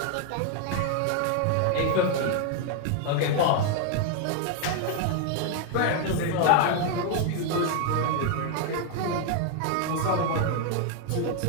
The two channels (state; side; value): different; both; correlation 0.00